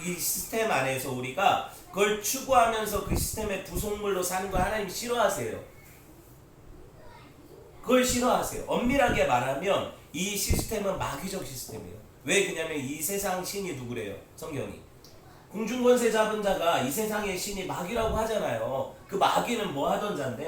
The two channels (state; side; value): identical; both; correlation 1.00